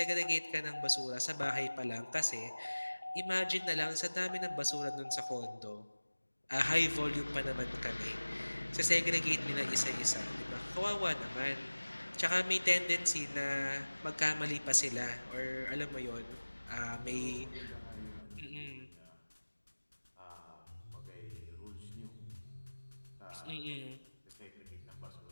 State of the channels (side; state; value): both; inverted; correlation -1.00